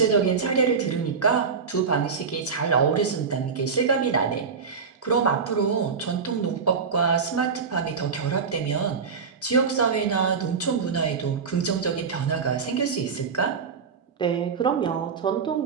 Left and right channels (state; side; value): quieter; left; 5.7 dB